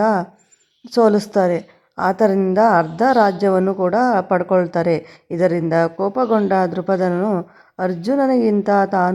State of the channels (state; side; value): identical; both; correlation 1.00